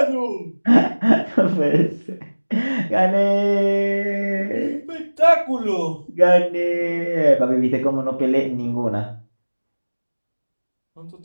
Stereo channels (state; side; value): inverted; both; correlation -1.00